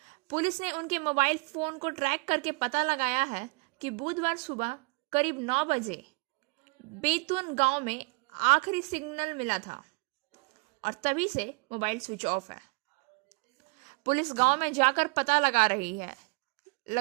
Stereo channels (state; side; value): quieter; left; 29.9 dB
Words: पुलिस ने उनके मोबाइल फोन को ट्रैक करके पता लगाया है कि बुधवार सुबह करीब 9 बजे बेतुन गांव में आखिरी सिग्नल मिला था और तभी से मोबाइल स्विच ऑफ है। पुलिस गांव में जाकर पता लगा